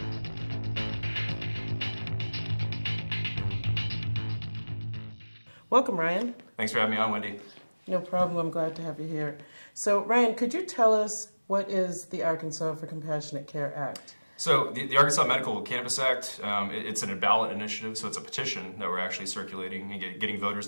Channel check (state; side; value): inverted; both; correlation -1.00